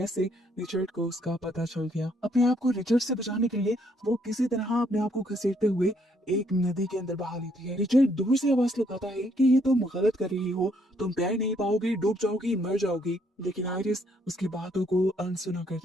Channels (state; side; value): normal; both; correlation 0.69